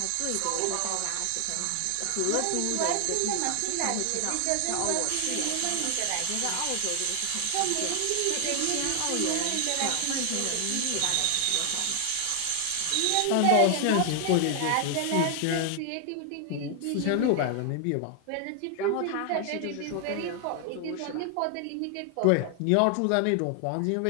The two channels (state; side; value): different; both; correlation 0.00